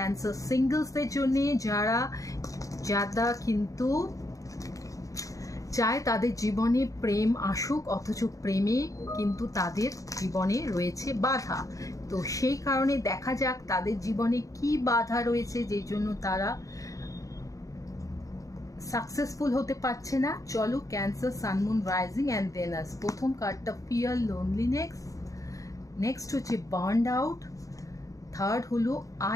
সিঙ্গলসদের জন্য, যারা কিন্তু চায় তাদের জীবনে প্রেম আসুক, অথচ প্রেমে কিন্তু তাদের জীবনে রয়েছে বাধা। তো সেই কারণে দেখা যাক তাদের জীবনে কি বাধা রয়েছে যেই জন্য তারা সাকসেসফুল হতে পারছে না। চলো, Cancer, sun, moon, rising and Venus. প্রথম কার্ডটা ফিয়ার, লোনলিনেস। নেক্সট হচ্ছে বার্নড আউট। থার্ড হলো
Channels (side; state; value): right; late; 0.16 ms